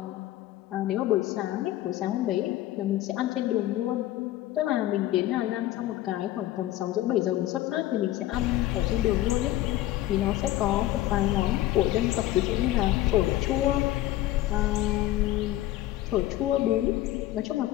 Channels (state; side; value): quieter; right; 14.9 dB